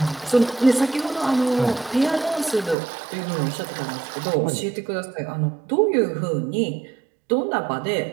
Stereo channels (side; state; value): left; drops out; at 2.8 s